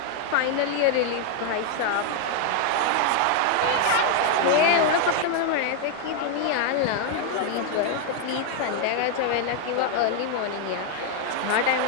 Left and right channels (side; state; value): both; different; correlation 0.00